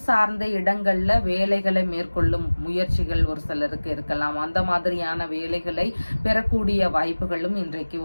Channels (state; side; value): inverted; both; correlation -1.00